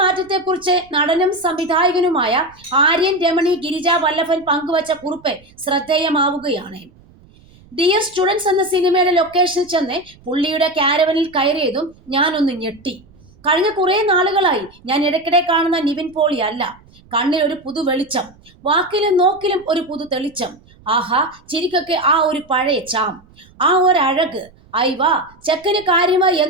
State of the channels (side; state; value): right; noise; rumble, 27 dB below the sound